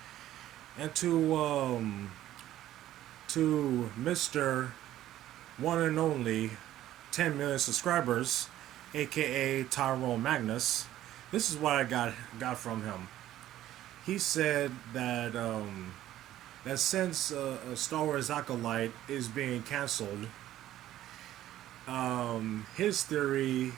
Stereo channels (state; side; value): quieter; left; 13.3 dB